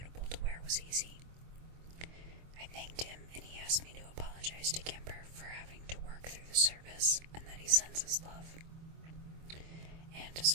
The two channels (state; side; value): late; left; 24 ms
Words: to wear was easy. I thanked him, and he asked me to apologize to Kimber for having to work through the service, and that he sends his love. And